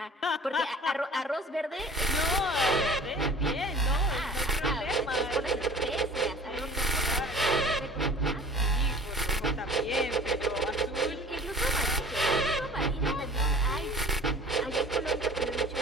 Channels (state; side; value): normal; both; correlation 0.45